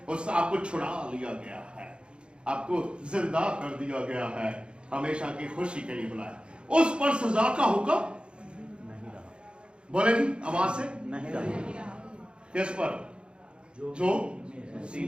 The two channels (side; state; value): left; late; 0.055 ms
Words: اس سے آپ کو چھڑا لیا گیا ہے, آپ کو زندہ کر دیا گیا ہے, ہمیشہ کی خوشی کے لیے بلایا. اس پر سزا کا حکم بولے جی آواز سے نہیں رہا. کس پر؟ جو